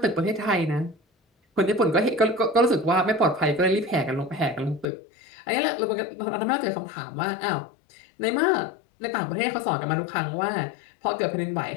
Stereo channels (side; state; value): right; drops out; at 4.9 s